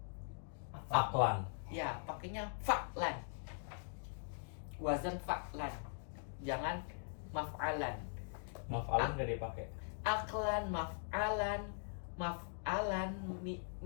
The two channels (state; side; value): silent; right; digital silence